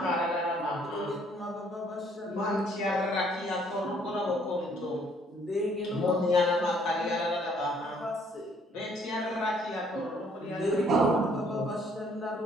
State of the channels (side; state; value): both; normal; correlation 0.63